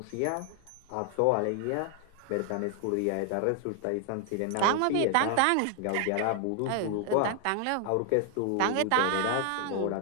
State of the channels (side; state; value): both; different; correlation 0.00